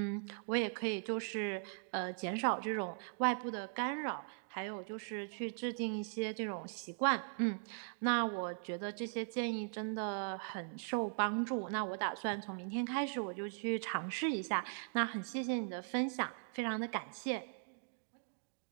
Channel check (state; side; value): silent; left; digital silence